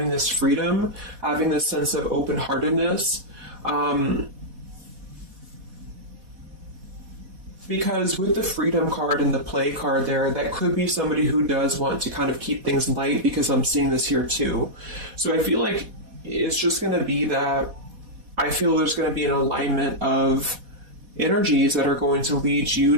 this freedom, having this sense of open-heartedness. Because with the freedom card and the play card there, that could be somebody who does want to kind of keep things light, because I'm seeing this here too. So I feel like it's just going to be that I feel there's going to be an alignment of energies that are going to lead you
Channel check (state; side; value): late; left; 4.1 ms